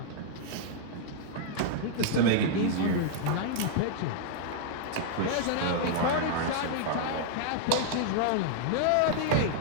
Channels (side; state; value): both; different; correlation -0.01